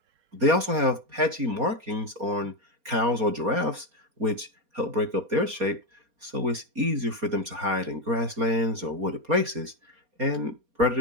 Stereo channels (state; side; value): late; left; 4.3 ms